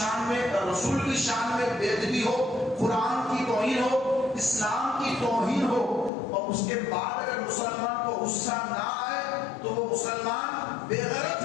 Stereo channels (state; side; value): drops out; right; at 6.1 s